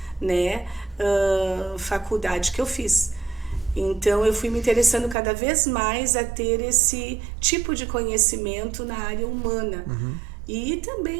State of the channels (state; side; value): drops out; left; at 5.2 s